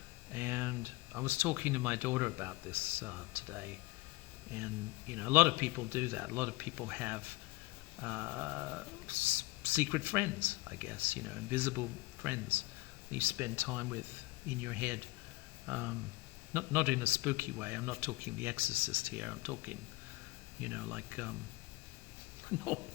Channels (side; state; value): right; quieter; 21.9 dB